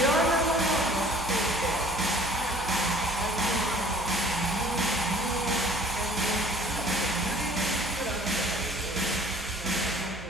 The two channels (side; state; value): both; normal; correlation 0.52